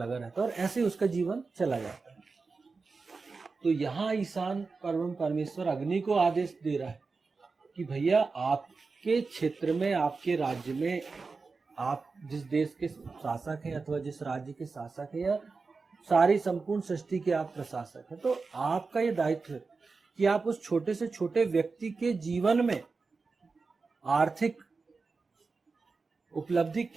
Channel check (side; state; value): left; quieter; 4.3 dB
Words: रहता है, और ऐसे उसका जीवन चला जाता है। तो यहाँ ईशान परमेश्वर अग्नि को आदेश दे रहा है कि भैया, आपके क्षेत्र में, आपके राज्य में, आप जिस देश के शासक हैं अथवा जिस राज्य के शासक हैं, या सारी संपूर्ण सृष्टि के आप प्रशासक हैं, तो आपका ये दायित्व है कि आप उस छोटे से छोटे व्यक्ति के जीवन में आर्थिक उपलब्धि